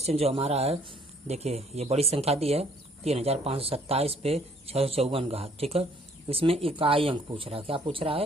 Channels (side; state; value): both; normal; correlation 0.61